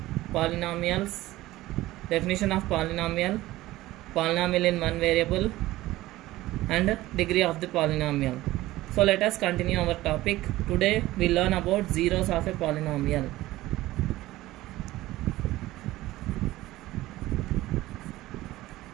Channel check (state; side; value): quieter; left; 17.0 dB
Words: polynomials, definition of polynomial, polynomial in one variable and degree of the polynomial. So let us continue our topic. Today we learn about zeros of a polynomial.